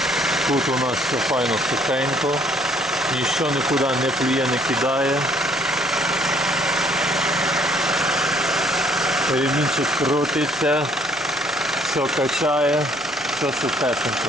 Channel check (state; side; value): normal; both; correlation 0.62